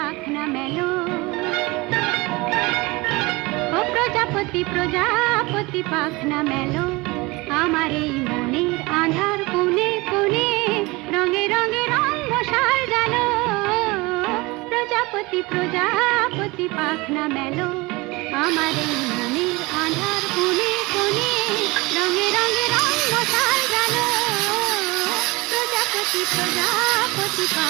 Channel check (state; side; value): quieter; left; 23.6 dB